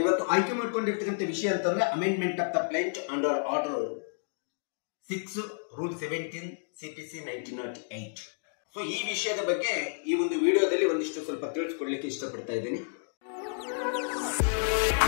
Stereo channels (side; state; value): right; silent; digital silence